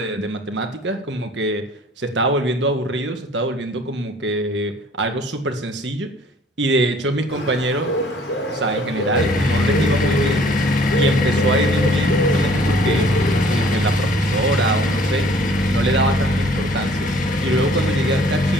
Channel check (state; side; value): normal; both; correlation 0.55